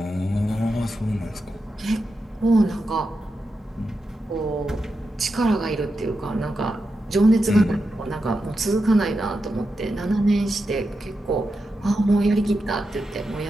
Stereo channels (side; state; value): both; normal; correlation 0.88